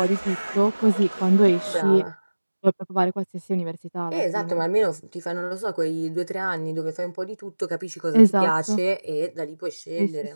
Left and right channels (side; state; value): both; inverted; correlation -1.00